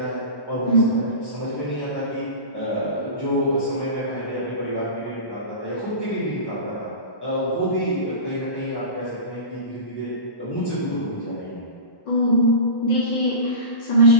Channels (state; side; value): late; right; 1.1 ms